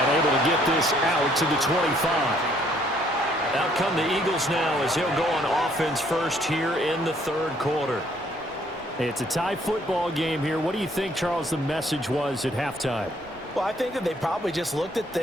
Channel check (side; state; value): both; normal; correlation 0.65